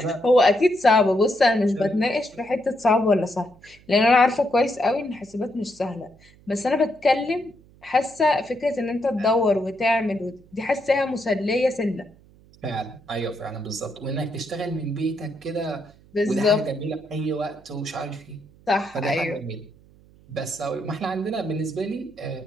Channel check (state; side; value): noise; right; hum, 27 dB below the sound